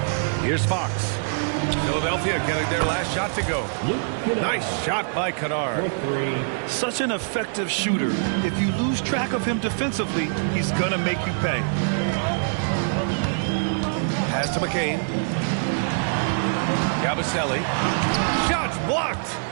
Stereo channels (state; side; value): silent; left; 59 dB below the other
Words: Here's Fox. Philadelphia getting their last shot to go. Nice shot by Kennard. Such an effective shooter. If you lose track of him defensively, he's going to make you pay. Pass to McCain. Yabusele. Shots blocked.